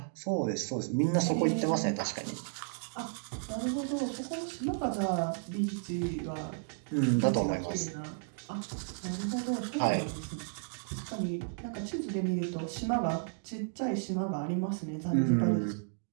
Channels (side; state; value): left; silent; digital silence